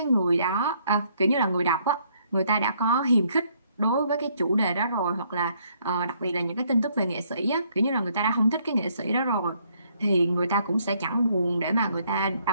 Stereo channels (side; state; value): both; inverted; correlation -0.68